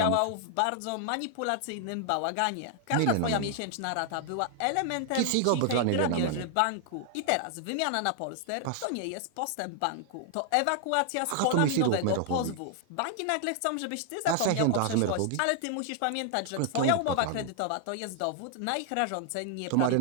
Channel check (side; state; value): both; different; correlation 0.00